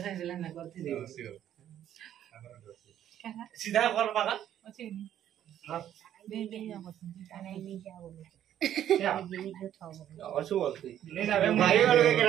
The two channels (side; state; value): left; quieter; 10.9 dB